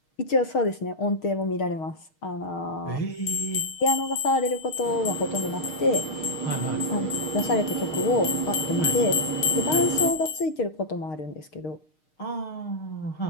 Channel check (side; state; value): right; late; 6.5 ms